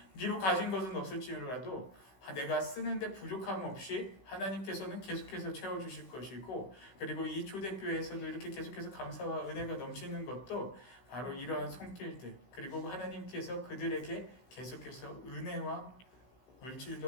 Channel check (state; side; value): late; right; 16 ms